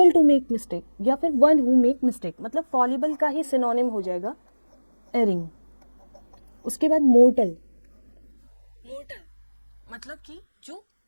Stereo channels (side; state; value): both; inverted; correlation -1.00